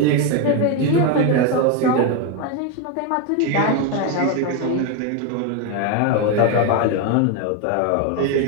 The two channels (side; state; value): both; different; correlation 0.02